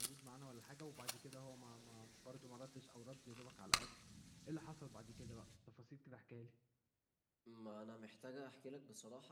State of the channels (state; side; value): identical; both; correlation 1.00